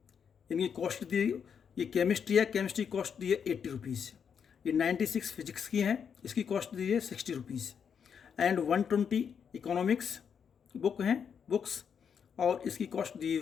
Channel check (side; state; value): right; quieter; 7.2 dB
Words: इनकी कॉस्ट दी, ये केमिस्ट्री है, केमिस्ट्री कॉस्ट दी है 80 रुपीज़। ये 96 फिजिक्स की हैं, इसकी कॉस्ट दी है 60 रुपीज़। एंड 120 इकोनॉमिक्स बुक हैं बुक्स, और इसकी कॉस्ट दी